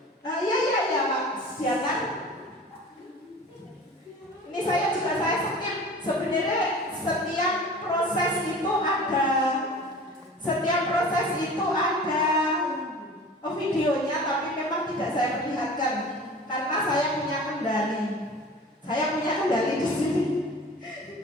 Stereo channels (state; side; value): normal; both; correlation 0.41